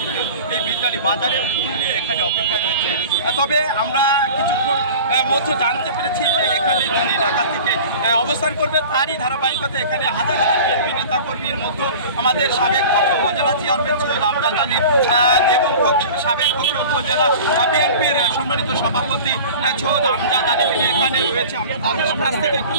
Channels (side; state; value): both; inverted; correlation -0.39